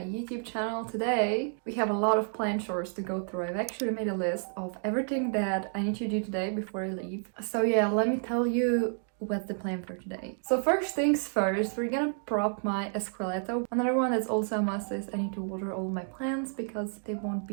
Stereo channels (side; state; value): left; silent; 55 dB below the other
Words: YouTube channel. Today we have a lot of plant chores to go through. I've actually made a list of everything that I need to do today before I leave. So yeah, let me tell you what's the plan for today. So first things first, we're gonna prop my escalatu. Another one that's also a must is I need to water all my plants because they won't